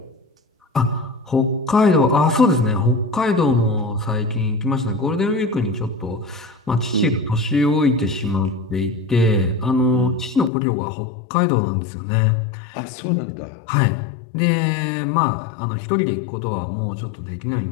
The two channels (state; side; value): drops out; right; at 10.5 s